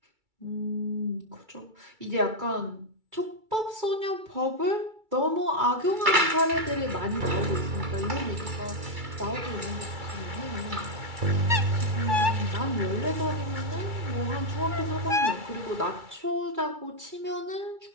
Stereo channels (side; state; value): left; late; 2.3 ms